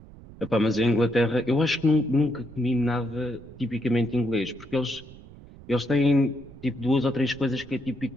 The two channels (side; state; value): right; noise; rumble, 19 dB below the sound